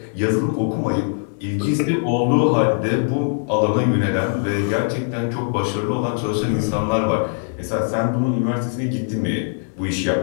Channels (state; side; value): silent; right; 65 dB below the other